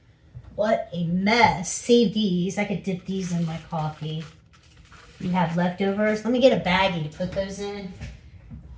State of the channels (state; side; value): identical; both; correlation 1.00